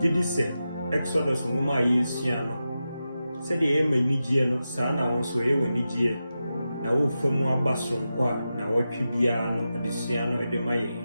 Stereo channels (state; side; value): inverted; both; correlation -0.91